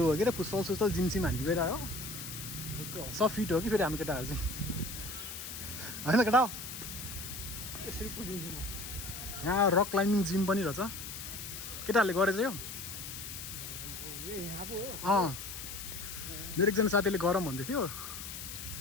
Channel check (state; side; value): noise; left; hiss, 8 dB below the sound